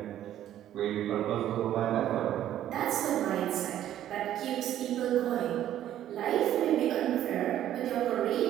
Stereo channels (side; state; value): left; quieter; 11.8 dB